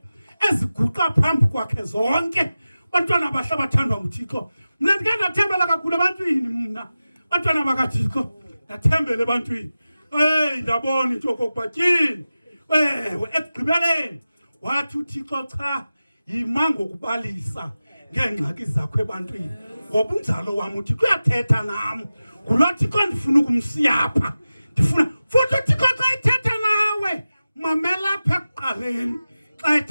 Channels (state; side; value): inverted; both; correlation -0.95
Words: eziguqa phambi kwakhe zonke. Bantwana bahle bathandwa nguThixo mina ndike ndathembela kakhulu ebantwini mna. Bantwana bakaThixo ndathembela ebantwini ndabona into yokokuba tyini ewe ekugqibeleni wathi uThixo cha yima ngokubalisa ngeengxaki zakho ebantwini ngoba unjalo wam uThixo uyathetha nam ngulo Thixo ndifuna ukumsiya apha. Ndifuna futhi uThixo xa ethetha nawe mamela apha ekuqaleni xa